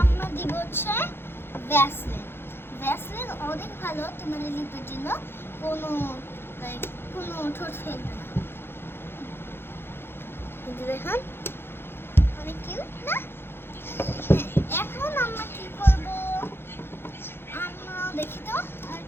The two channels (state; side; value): late; right; 0.11 ms